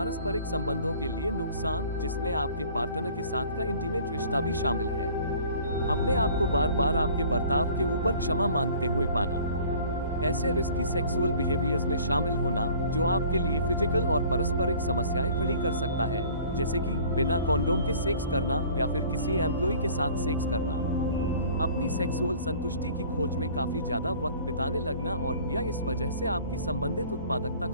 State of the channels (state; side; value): inverted; both; correlation -0.49